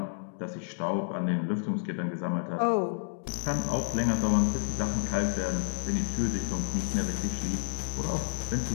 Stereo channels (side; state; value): right; silent; digital silence